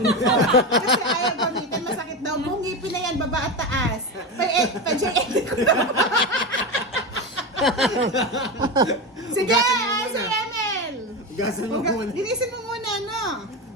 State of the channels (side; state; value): both; normal; correlation 0.18